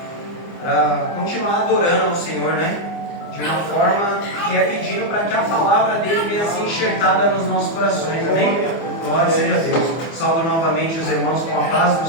para continuar adorando ao Senhor, né? De uma forma que é pedindo para que a palavra dele venha ser enxertada nos nossos corações, amém? Glória seja a Deus. Saúdo novamente os irmãos com a paz do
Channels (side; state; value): right; late; 24 ms